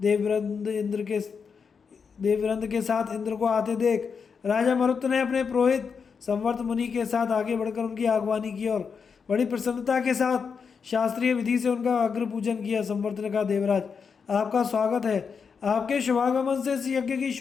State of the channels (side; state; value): right; quieter; 5.9 dB